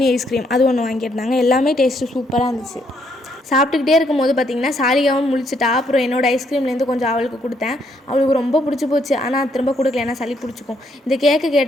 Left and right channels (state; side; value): normal; both; correlation 0.72